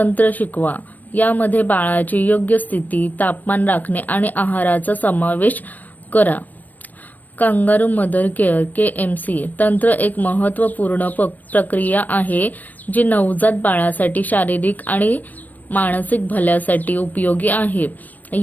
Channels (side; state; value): right; late; 0.085 ms